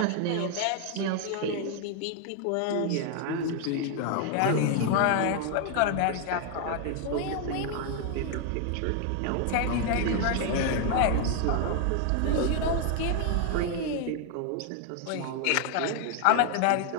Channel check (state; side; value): different; both; correlation 0.00